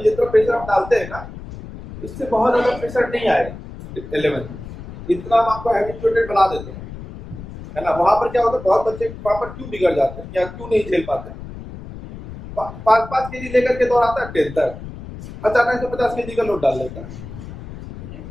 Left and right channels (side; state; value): left; noise; rumble, 13 dB below the sound